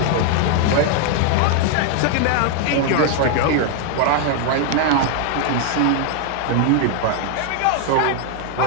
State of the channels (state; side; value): different; both; correlation 0.00